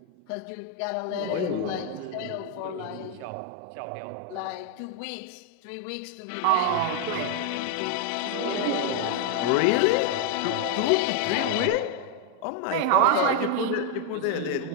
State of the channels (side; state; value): both; different; correlation 0.00